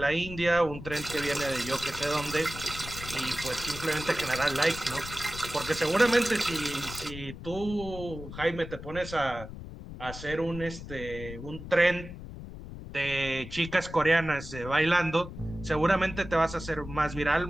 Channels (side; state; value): left; noise; rumble, 11 dB below the sound